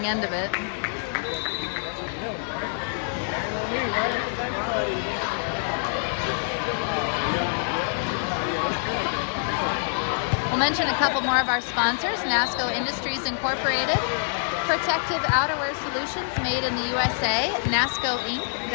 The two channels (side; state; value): right; silent; digital silence